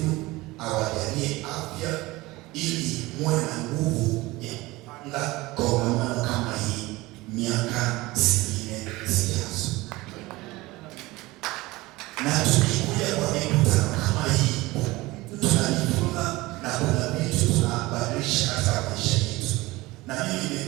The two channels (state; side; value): quieter; left; 20.4 dB